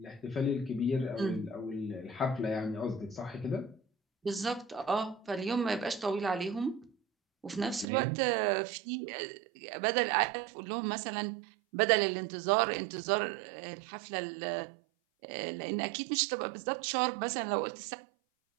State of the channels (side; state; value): left; drops out; at 7.9 s